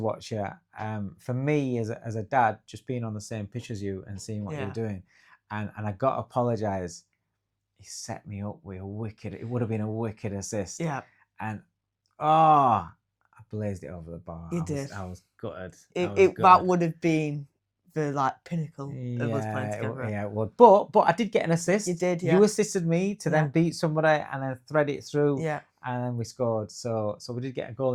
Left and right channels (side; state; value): both; identical; correlation 1.00